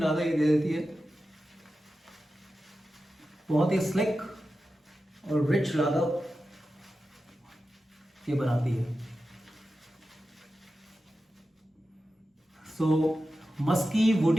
लादा ये दे देती है। बहुत ही स्लिक और रिच लादा ये बनाती है। सो मस्की,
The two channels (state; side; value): normal; both; correlation 0.92